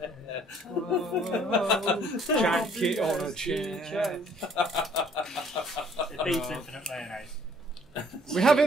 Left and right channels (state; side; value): normal; both; correlation 0.60